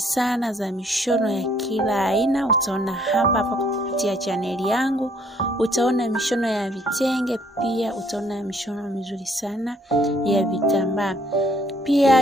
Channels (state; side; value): normal; both; correlation 0.64